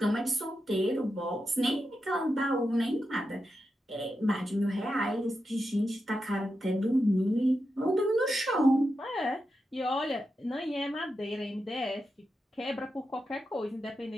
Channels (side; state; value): both; normal; correlation 0.88